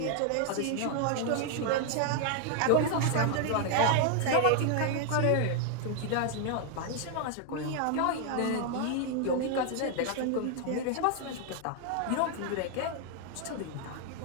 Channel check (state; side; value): different; both; correlation 0.00